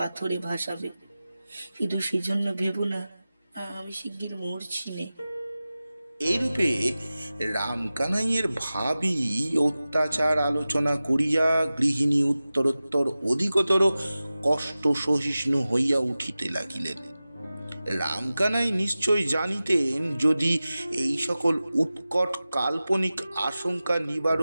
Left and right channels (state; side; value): inverted; both; correlation -0.96